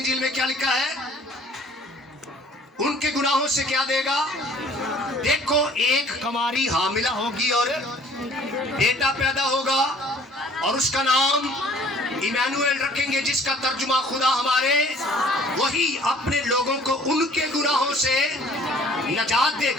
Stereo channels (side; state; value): both; normal; correlation 0.54